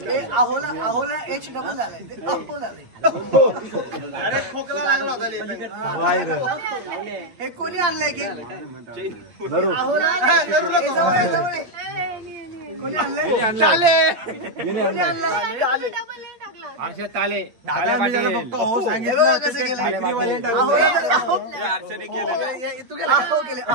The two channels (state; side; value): late; left; 8.7 ms